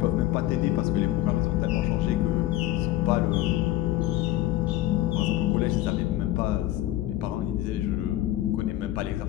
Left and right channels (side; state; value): right; quieter; 14.9 dB